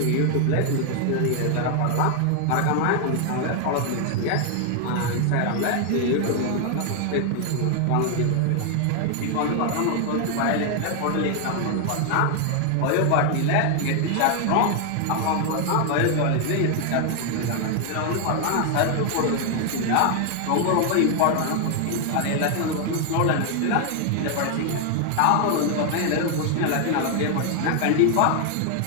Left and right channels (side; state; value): both; different; correlation 0.00